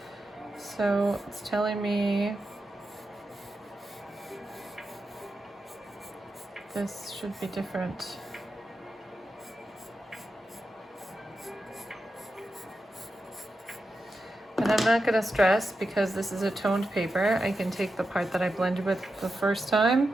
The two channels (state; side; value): normal; both; correlation 0.89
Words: So it's telling me this should be different. And I'm not going to stress because this is a toned paper. I can take the part that I blended with the first time